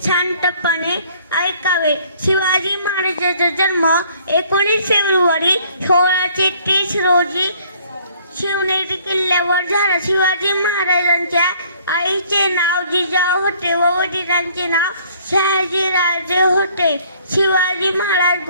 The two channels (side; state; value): both; inverted; correlation -0.59